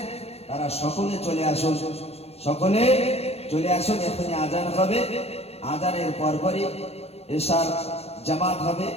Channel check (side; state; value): right; late; 0.30 ms